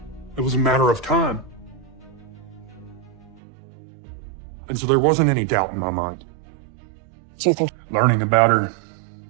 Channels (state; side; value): drops out; left; at 3.4 s